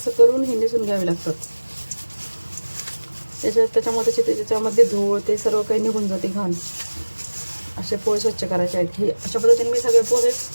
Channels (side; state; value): both; inverted; correlation -1.00